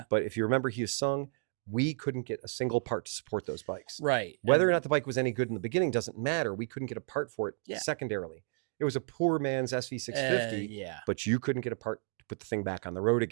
But if you remember Hyosung, we couldn't get a single part to support those bikes. Right. Whether or not the bike was any good in the beginning doesn't matter. We couldn't get a part for it secondarily. It was a poor man's SV650, but you couldn't get a part to put the thing back on the road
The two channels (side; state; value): left; silent; 56 dB below the other